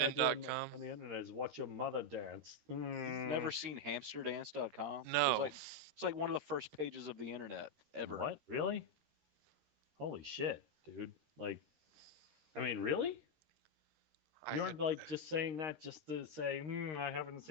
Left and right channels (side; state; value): left; late; 13 ms